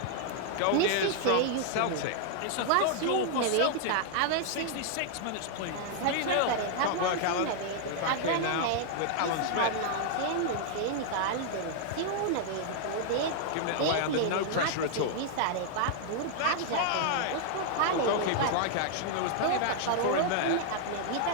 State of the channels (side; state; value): both; different; correlation -0.01